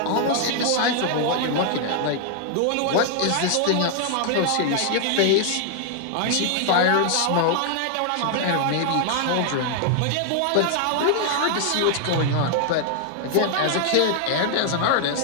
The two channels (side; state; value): both; different; correlation 0.00